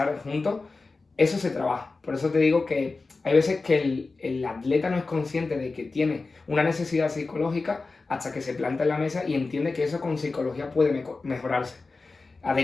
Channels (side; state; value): right; quieter; 3.8 dB